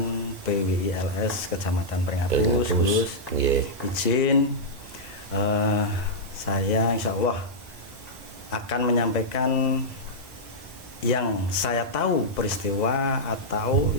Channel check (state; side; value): normal; both; correlation -0.08